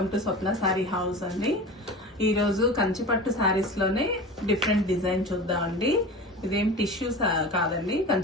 to Swapna sorry house అండి. ఈరోజు కంచిపట్టు శారీస్లోనే డిఫరెంట్ డిజైన్ చూద్దామండి. ఇదేం టిష్యూ కాదండి,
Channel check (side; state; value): both; normal; correlation 0.33